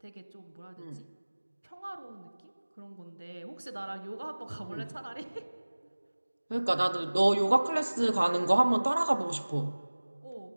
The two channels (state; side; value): inverted; both; correlation -1.00